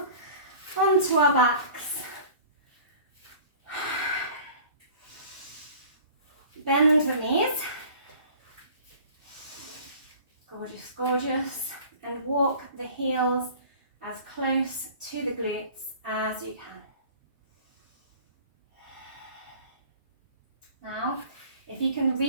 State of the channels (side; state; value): both; inverted; correlation -0.45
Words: onto our backs. Bend the knees. Gorgeous, gorgeous. And walk the heels as close to the glutes as you can. Now, if you can